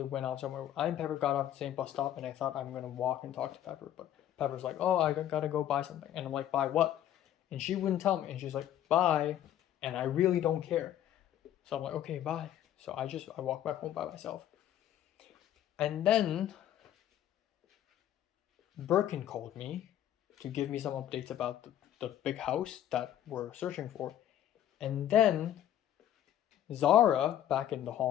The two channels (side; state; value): right; quieter; 11.5 dB